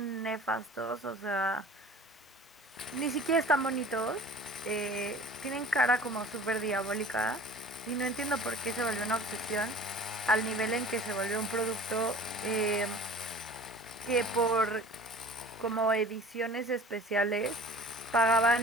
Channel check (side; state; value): both; normal; correlation 0.44